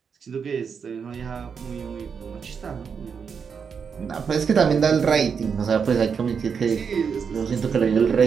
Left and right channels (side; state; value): left; quieter; 6.4 dB